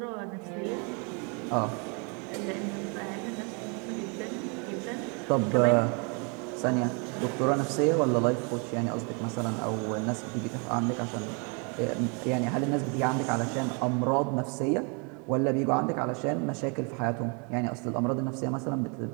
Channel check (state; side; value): quieter; left; 34.7 dB